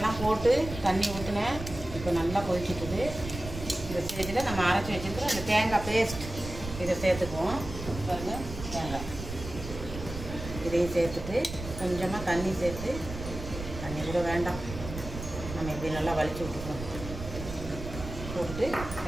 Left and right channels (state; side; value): noise; right; rumble, 9 dB below the sound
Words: போட்டு தண்ணி ஊற்றினேன். இப்போ நல்லா கொதிச்சுட்டுது. இந்த ஸ்டேஜில் நம்ம அரைச்சி வச்சுருக்கிற அந்த தேங்காய் பேஸ்ட் இதை சேர்த்துக்குவோம். பாருங்கள், தேங்காய் இதையும் சேர்த்துட்டு கொஞ்சமாக தண்ணி சேர்த்து, தண்ணி கூட வேண்டாம், நம்ம இப்படி நல்லா வலிச்சு விட்டுக்குவோம். போட்டு